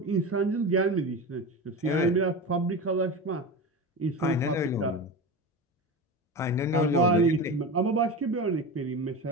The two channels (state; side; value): normal; both; correlation 0.25